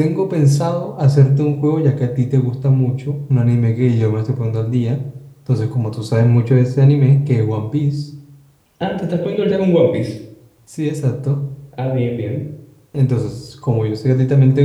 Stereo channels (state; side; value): identical; both; correlation 1.00